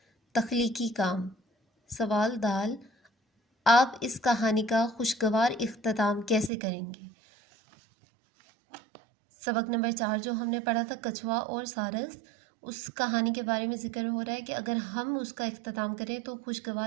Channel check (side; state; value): left; drops out; at 6.5 s